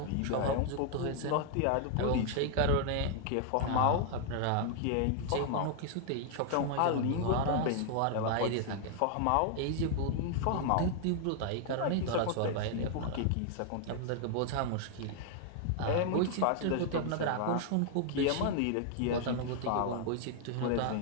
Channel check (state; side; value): different; both; correlation 0.00